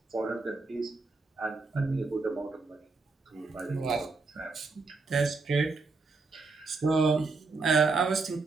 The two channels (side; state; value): left; quieter; 3.9 dB